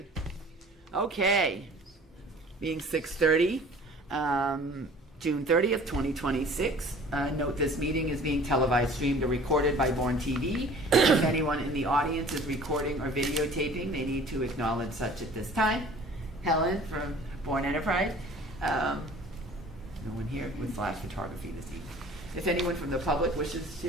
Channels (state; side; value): normal; both; correlation 0.48